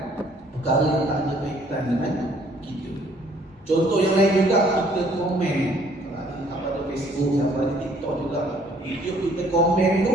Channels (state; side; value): normal; both; correlation 0.61